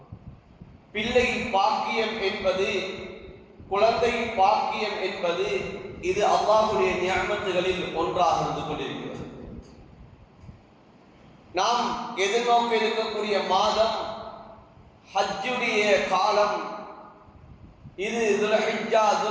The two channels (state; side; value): identical; both; correlation 1.00